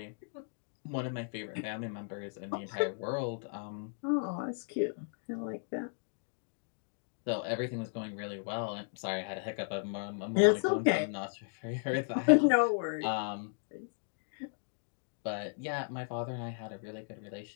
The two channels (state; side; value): silent; right; digital silence